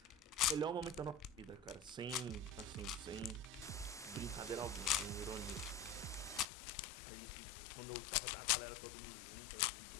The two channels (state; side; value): drops out; right; at 6.5 s